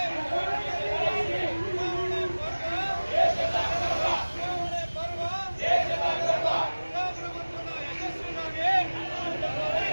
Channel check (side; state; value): both; inverted; correlation -1.00